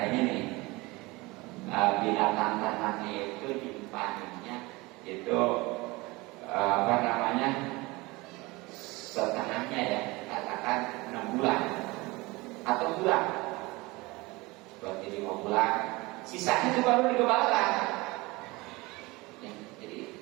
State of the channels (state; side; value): quieter; left; 23.0 dB